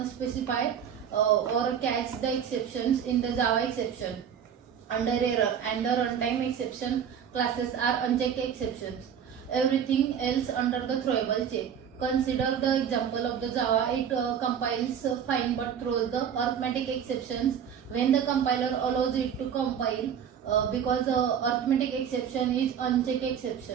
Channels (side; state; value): left; quieter; 8.2 dB